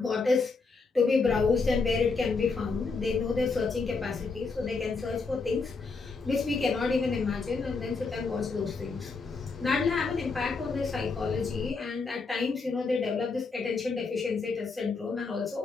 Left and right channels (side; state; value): right; quieter; 4.3 dB